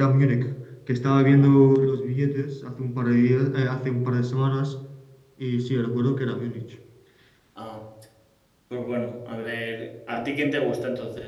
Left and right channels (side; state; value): both; identical; correlation 1.00